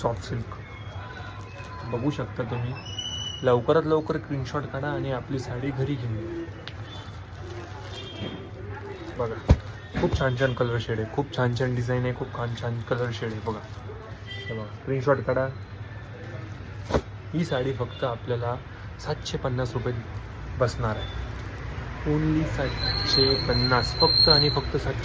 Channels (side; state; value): both; identical; correlation 1.00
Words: सॉफ्ट सिल्क. बघू शकता तुम्ही. लवकरात लवकर स्क्रीनशॉट काढा आणि आपली साडी घरी घेऊन या. बघा, खूप छान छान कलर शेड आहे, खूप छान छान डिझाईन आहे, खूप छान छान कलर शेड आहे. बघा, हे बघा, स्क्रीनशॉट काढा. ही साडी फक्त आपल्याला 750 रुपये बसणार आहे. ओनली 750, फक्त आणि फक्त